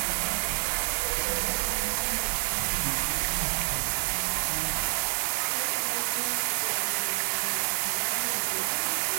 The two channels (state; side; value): silent; left; 59 dB below the other